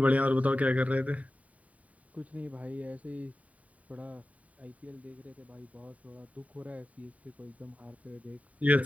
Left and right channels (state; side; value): late; left; 0.069 ms